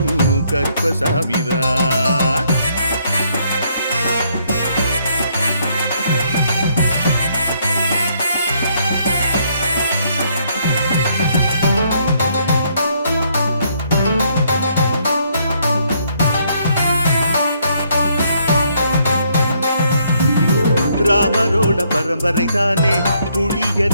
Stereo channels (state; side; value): inverted; both; correlation -0.70